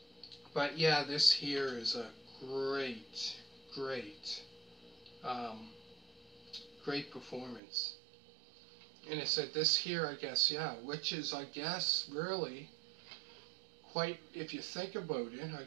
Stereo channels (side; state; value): left; drops out; at 7.6 s